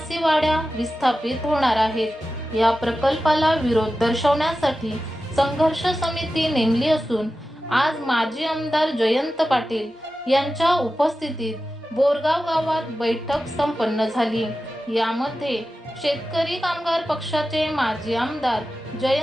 वाड्या विस्थापित होणार आहेत. या प्रकल्पाला विरोध दर्शवण्यासाठी संघर्ष समिती नेमली असून आज माजी आमदार जयंत पाटील यांच्या उपस्थितीत बोरगाव गावात बैठक संपन्न झाली. यामध्ये शेतकरी कामगार पक्षाचे माजी आमदार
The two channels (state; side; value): normal; both; correlation 0.93